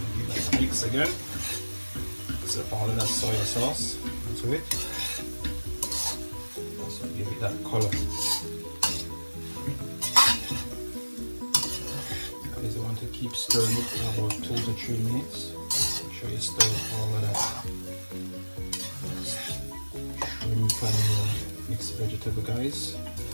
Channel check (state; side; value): inverted; both; correlation -1.00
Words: to give that a mix again. Mix up all of that soy sauce into it. Also give it that color. You want to keep stirring it for about 2 to 3 minutes. Make sure you stir all of that shrimp and mixed vegetable, guys.